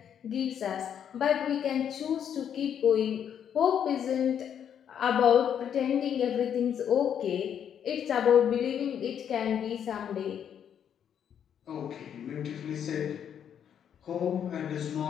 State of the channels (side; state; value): right; quieter; 8.8 dB